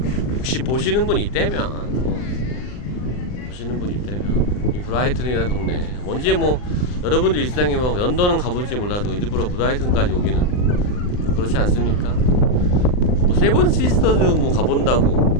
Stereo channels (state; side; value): late; right; 39 ms